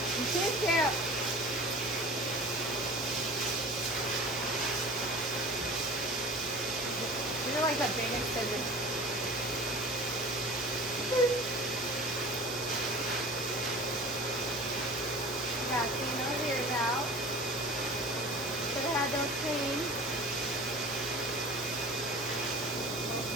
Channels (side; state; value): both; normal; correlation 0.39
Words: She's cute. These are like the biggest scissors. Got clean those ears out. Should have had those clean.